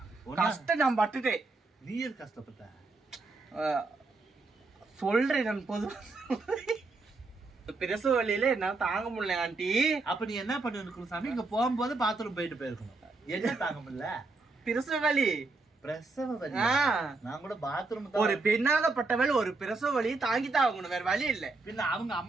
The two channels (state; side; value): quieter; left; 3.6 dB